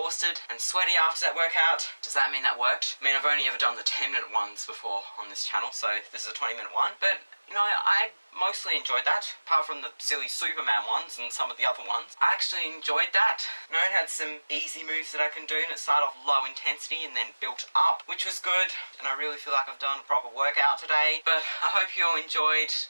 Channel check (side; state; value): both; inverted; correlation -1.00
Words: and sweaty after that workout. Does that mean that worked? I mean, I've only ever done the 10-minute ones before on this channel, so this is a 20-minute one. But, you know, I mostly enjoyed that, apart from the silly Superman ones and some of the other ones. I actually enjoyed that. You know, it had some easy moves that I can do, and it started off low intensity and then built up, which was good. And I really feel like I've done a proper workout today. But I hope you all enjoyed,